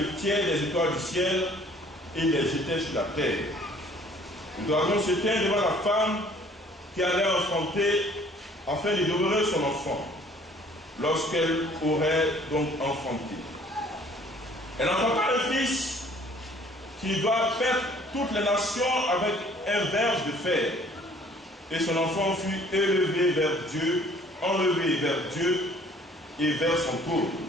le tiers des étoiles du ciel et les jetait sur la terre. Le dragon se tint devant la femme qui allait enfanter afin de dévorer son enfant, lorsqu'elle aurait donc enfanté. Elle enfanta un fils qui doit perdre toutes les nations avec un verge de fer. Et son enfant fut élevé vers Dieu, enlevé vers Dieu et vers son trône.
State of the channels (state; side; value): normal; both; correlation 0.56